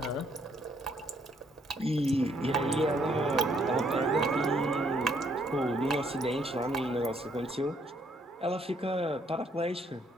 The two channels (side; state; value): both; normal; correlation 0.69